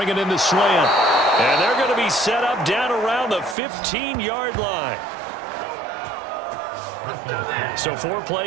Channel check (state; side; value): drops out; left; at 3.6 s